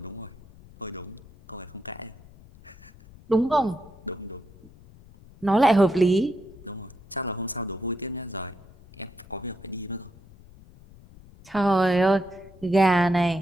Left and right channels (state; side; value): noise; left; rumble, 22 dB below the sound